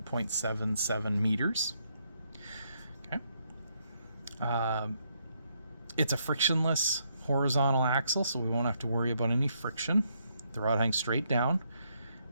0.77 meters. Okay. It's a frictionless horizontal axle, so we won't have to worry about any friction. The rod hangs straight down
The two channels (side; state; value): both; inverted; correlation -0.75